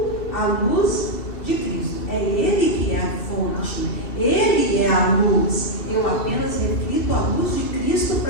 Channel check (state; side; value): late; right; 2.7 ms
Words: a luz de Cristo. É Ele que é a fonte. Ele é a luz. Eu apenas reflito a luz de Cristo